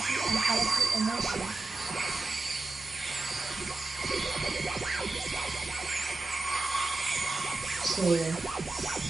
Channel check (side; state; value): left; quieter; 3.4 dB